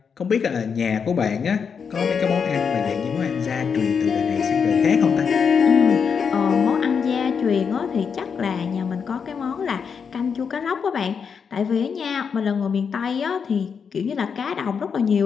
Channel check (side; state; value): right; quieter; 6.3 dB